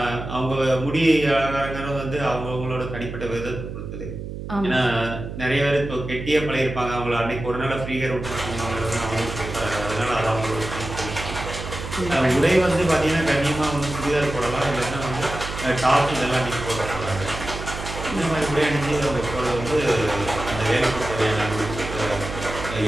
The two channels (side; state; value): right; noise; hum, 8 dB below the sound